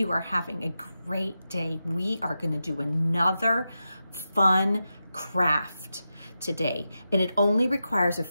are having a great day. We are going to do another fun craft today, and it only requires a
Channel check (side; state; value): both; inverted; correlation -0.90